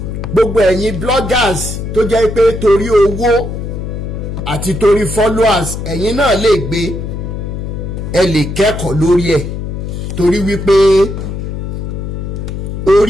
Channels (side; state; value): left; noise; hum, 5 dB below the sound